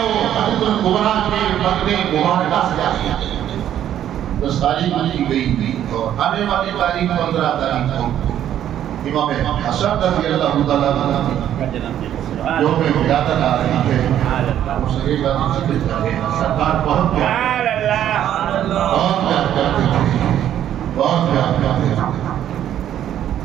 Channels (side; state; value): left; quieter; 10.9 dB